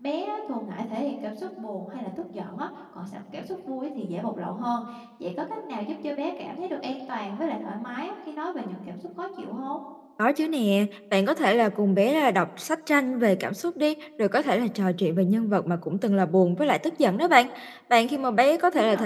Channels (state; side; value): identical; both; correlation 1.00